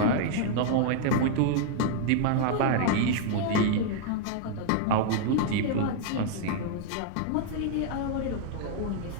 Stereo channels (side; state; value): both; different; correlation -0.01